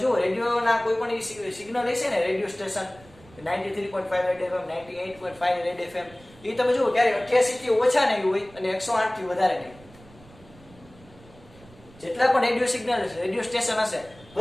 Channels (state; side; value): noise; right; rumble, 24 dB below the sound